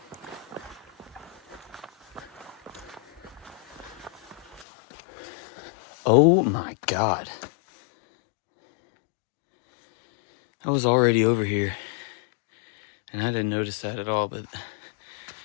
Oh my God. I was already over here and I didn't notice that at all, but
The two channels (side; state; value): right; drops out; at 4.7 s